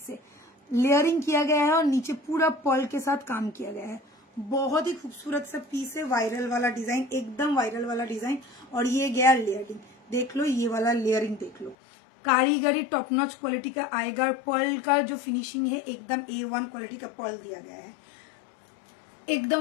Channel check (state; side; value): drops out; right; at 11.8 s